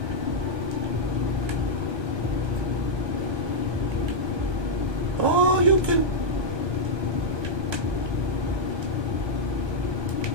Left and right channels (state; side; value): late; left; 1.2 ms